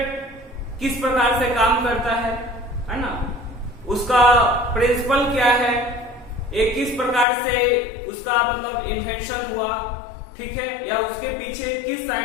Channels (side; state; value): right; drops out; at 7.2 s